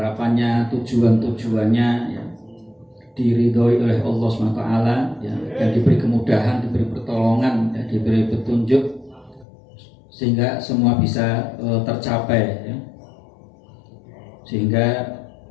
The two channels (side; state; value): right; drops out; at 9.5 s